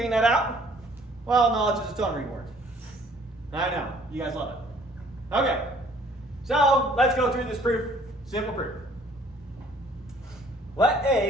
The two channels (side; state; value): both; normal; correlation 0.58